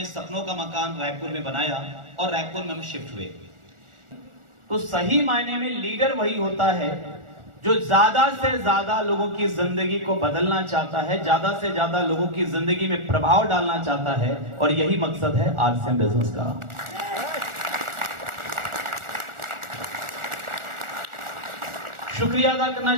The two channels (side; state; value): left; late; 1.4 ms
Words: सपनों का मकान रायपुर में बनाया और रायपुर में हम शिफ्ट हुए। तो सही मायने में लीडर वही होता है जो ज्यादा से ज्यादा लोगों की जिंदगी को बदलना चाहता है, ज्यादा से ज्यादा लोगों की जिंदगी में प्रभाव डालना चाहता है, और यही मकसद है आरसीएम बिजनेस का। शुक्रिया अदा करना